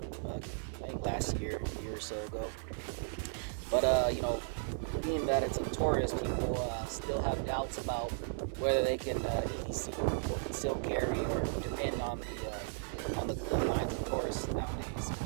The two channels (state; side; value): silent; left; 54 dB below the other